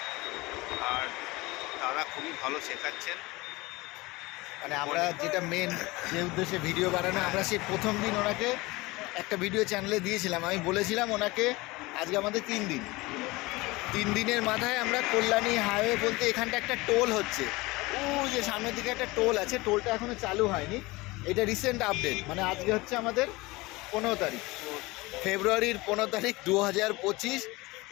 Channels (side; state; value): right; quieter; 22.1 dB